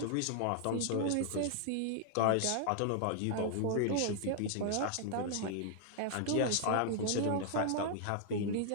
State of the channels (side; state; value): both; different; correlation -0.01